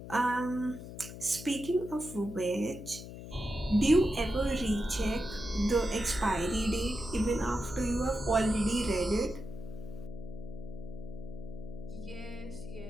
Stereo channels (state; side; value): noise; left; hum, 11 dB below the sound